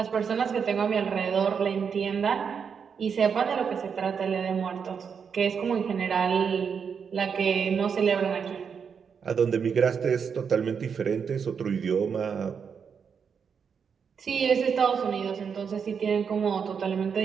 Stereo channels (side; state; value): left; quieter; 6.6 dB